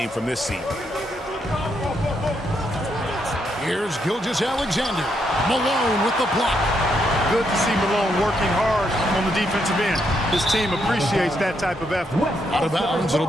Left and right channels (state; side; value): normal; both; correlation 0.78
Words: from this seat. Here's Gilgeous-Alexander. Malone with the block. Good to see Malone working hard on the defensive end. His team appreciates that type of effort. Out of bounds, it'll